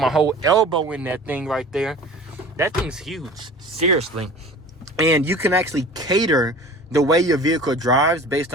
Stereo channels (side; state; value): both; normal; correlation 0.41